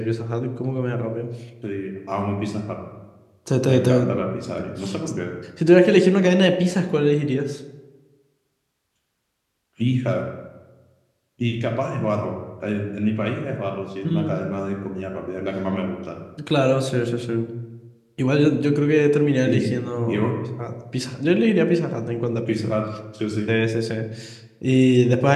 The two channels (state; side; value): identical; both; correlation 1.00